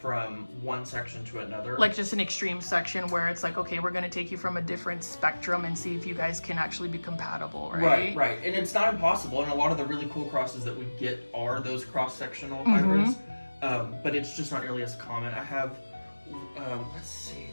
one section to another. Like just an extreme section where it's like, okay, we're going to take you from a different spectrum and see if you guys can actually be compatible, right? Right. And it's not impossible, and a lot of the really cool crosses that we get are those cross-sectional hybrids, but it's just not nearly as common. I have,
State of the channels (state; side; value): inverted; both; correlation -1.00